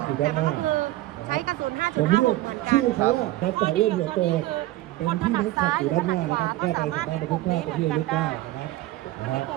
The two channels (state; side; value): quieter; left; 16.8 dB